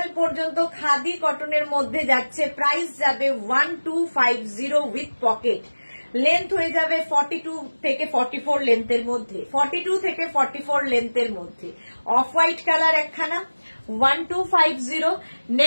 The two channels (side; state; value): both; inverted; correlation -1.00